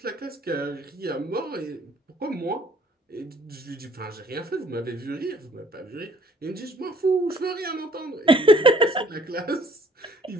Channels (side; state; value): both; normal; correlation 0.59